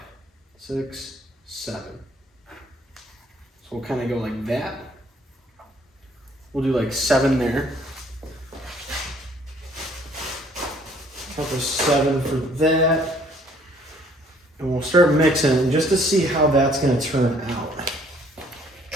6, 7. So we'll kind of go like that. We'll do like 7 there. Count the 7 for that. And we'll start mixing just to see how that's going to turn out.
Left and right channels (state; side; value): normal; both; correlation 0.60